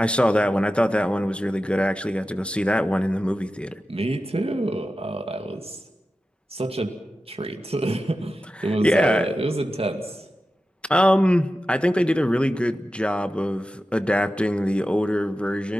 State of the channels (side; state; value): both; normal; correlation 0.93